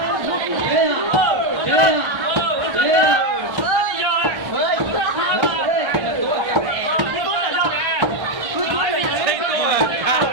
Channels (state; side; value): late; left; 1.3 ms